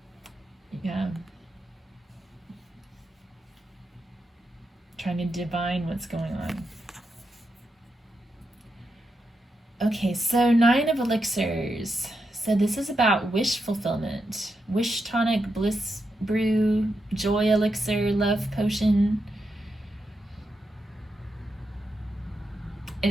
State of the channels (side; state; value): both; normal; correlation 0.85